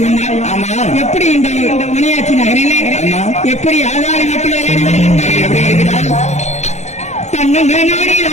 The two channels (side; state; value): right; late; 0.33 ms